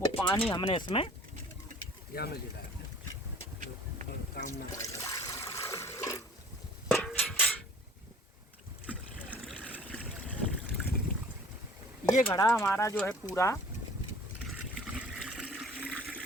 वो पानी हमने इसमें ये घड़ा हमारा जो है पूरा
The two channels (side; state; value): both; normal; correlation 0.50